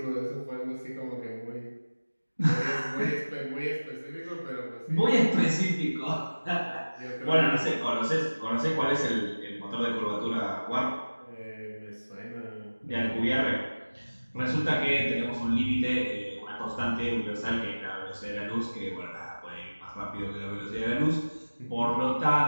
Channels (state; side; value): inverted; both; correlation -1.00